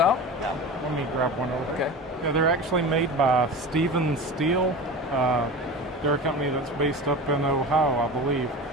Yeah, let me grab one over. Okay. Yeah, they're actually made by Stevens Steel. They're a company that's based up in Ohio, I believe.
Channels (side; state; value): both; normal; correlation 0.31